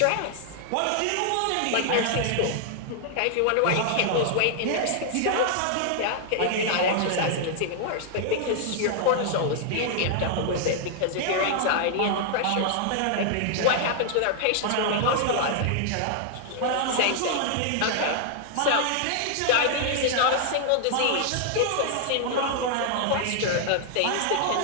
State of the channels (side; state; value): both; different; correlation 0.00